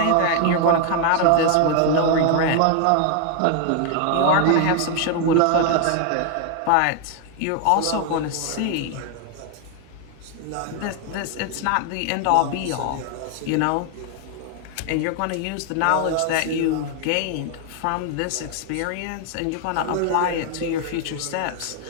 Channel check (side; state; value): both; different; correlation 0.00